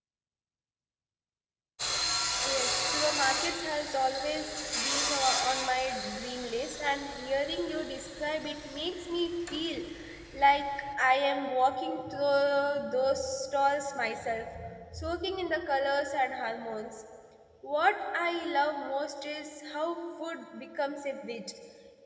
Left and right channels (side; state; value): both; identical; correlation 1.00